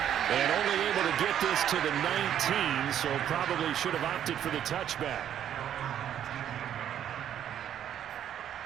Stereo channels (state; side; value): quieter; left; 10.1 dB